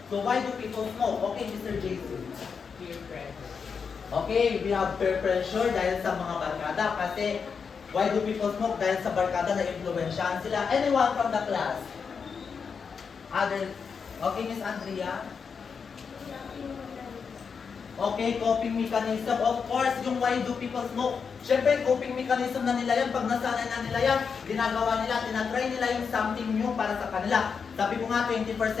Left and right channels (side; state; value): right; quieter; 5.9 dB